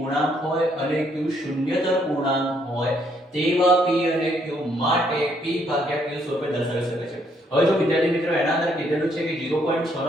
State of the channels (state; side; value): normal; both; correlation 0.70